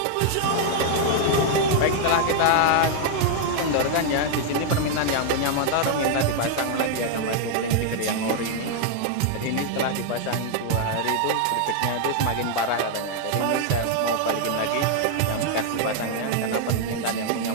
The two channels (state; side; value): different; both; correlation 0.00